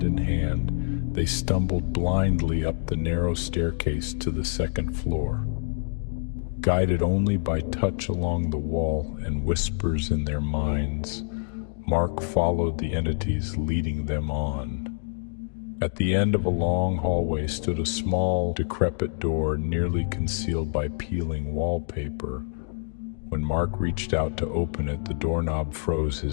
in hand, they stumbled blindly up the narrow staircase to the second floor. Guided only by touch along the wall and whispers in their minds, Mark followed the entities leading them on. At the end of a long hallway stood a small, decrepit door nearly concealed by peeling wallpaper. When Mark reached out to open it, the doorknob froze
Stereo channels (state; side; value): silent; right; digital silence